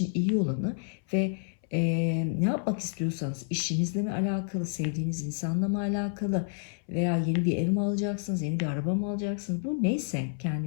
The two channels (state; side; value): silent; right; 58 dB below the other